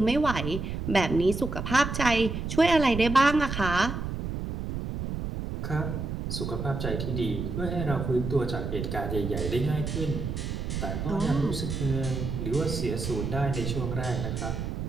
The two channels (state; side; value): noise; right; rumble, 4 dB below the sound